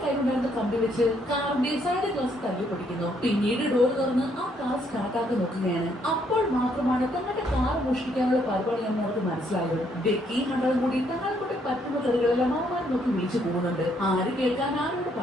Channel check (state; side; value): normal; both; correlation 0.70